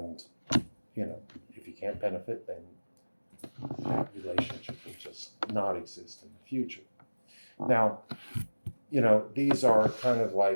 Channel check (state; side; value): inverted; both; correlation -1.00